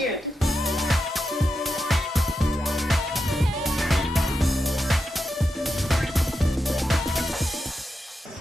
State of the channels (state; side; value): normal; both; correlation 0.88